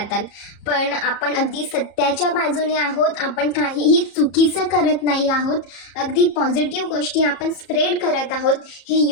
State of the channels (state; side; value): late; right; 34 ms